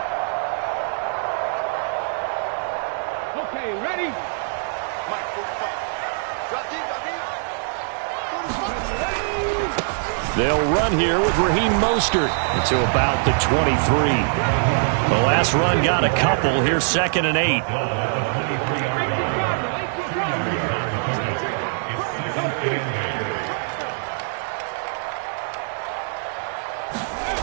Okay, ready? Mike, 45. Got deep. 45. They'll run here with Raheem Mostert to about the 23. The last run got a couple. Here's 2nd and 8.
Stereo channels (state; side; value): silent; left; digital silence